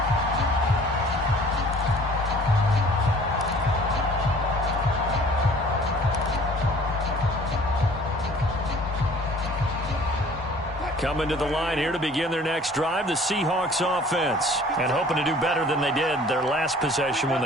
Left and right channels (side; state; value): both; normal; correlation 0.51